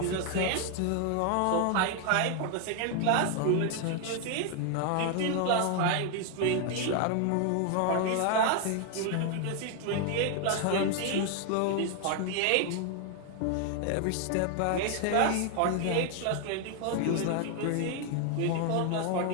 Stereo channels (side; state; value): both; different; correlation 0.00